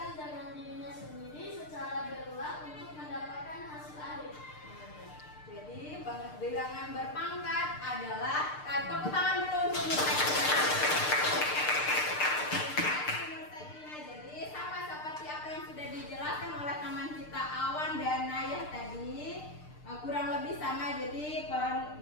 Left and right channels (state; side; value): late; right; 6.6 ms